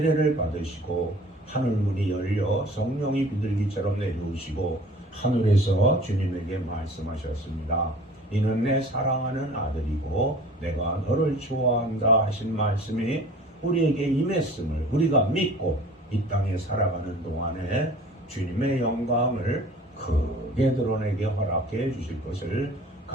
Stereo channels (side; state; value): both; normal; correlation 0.46